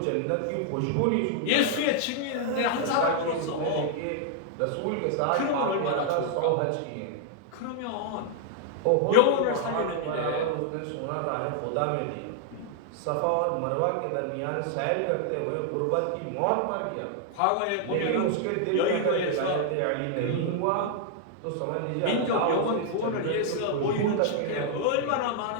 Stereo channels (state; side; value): different; both; correlation 0.00